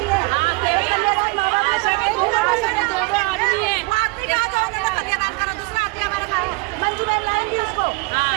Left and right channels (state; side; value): quieter; left; 27.1 dB